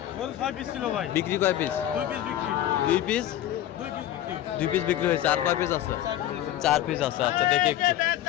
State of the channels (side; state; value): right; quieter; 12.5 dB